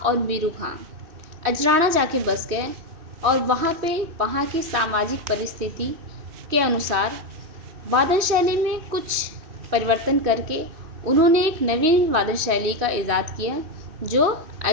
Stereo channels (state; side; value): late; left; 3.1 ms